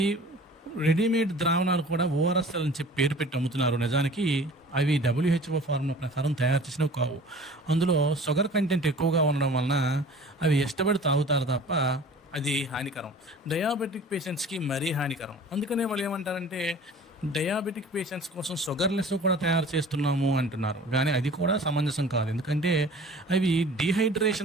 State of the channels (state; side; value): normal; both; correlation 0.45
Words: రెడీమేడ్ ద్రావణాలు కూడా ఓఆర్ఎస్ఎల్ అని చెప్పి పేరు పెట్టి అమ్ముతున్నారు. నిజానికి అవి డబ్ల్యూహెచ్ఓ ఫార్ములా ప్రకారం తయారు చేసినవి కావు. అందులో షుగర్ కంటెంట్ ఎక్కువగా ఉండడం వలన అవి ఇష్టపడి తాగుతారు తప్ప అది హానికరం. డయాబెటిక్ పేషెంట్స్‌కి మరీ హానికరం. అందుకనే వాళ్ళు ఏమంటారంటే డయాబెటిక్ పేషెంట్స్ కోసం షుగర్‌లెస్ కూడా తయారు చేస్తున్నాము అంటున్నారు. కానీ అది కూడా సమంజసం కాదు. ఎందుకంటే అవి